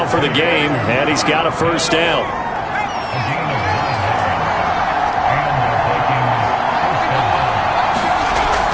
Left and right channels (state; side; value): identical; both; correlation 1.00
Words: for the game, and he's got a first down.